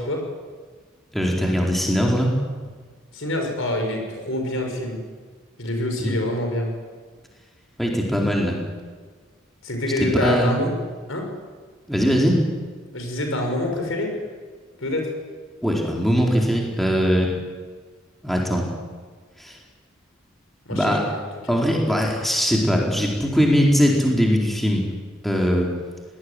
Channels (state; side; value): normal; both; correlation 0.78